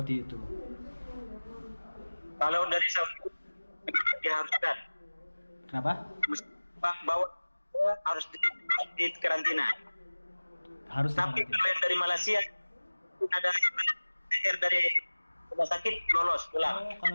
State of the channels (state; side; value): inverted; both; correlation -1.00